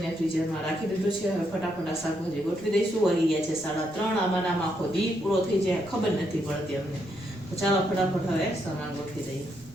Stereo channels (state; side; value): noise; right; rumble, 22 dB below the sound